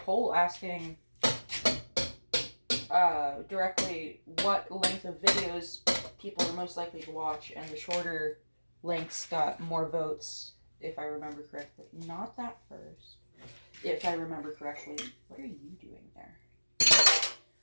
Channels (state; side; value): inverted; both; correlation -1.00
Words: asking directly what length of videos people are most likely to watch, and the shorter lengths got more votes, if I remember correctly. Not that first. If I remember correctly. What are you doing there?